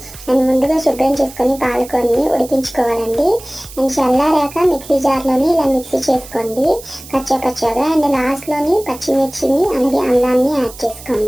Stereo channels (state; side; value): noise; right; hiss, 17 dB below the sound